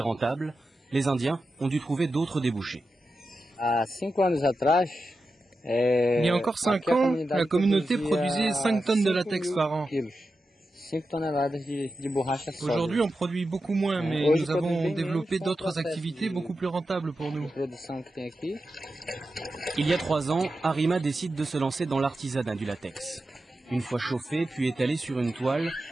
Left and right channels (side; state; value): both; normal; correlation 0.91